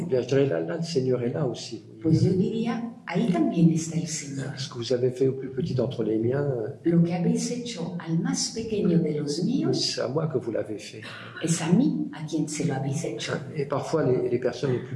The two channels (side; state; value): both; identical; correlation 1.00